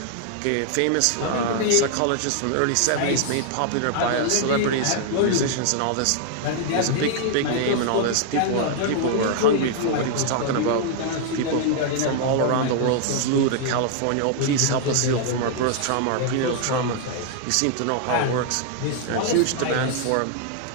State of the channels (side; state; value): both; different; correlation 0.00